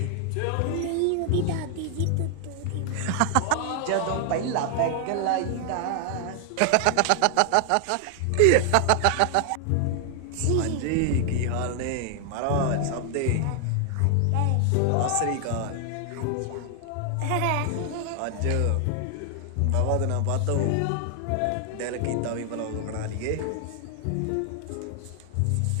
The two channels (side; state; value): both; different; correlation 0.00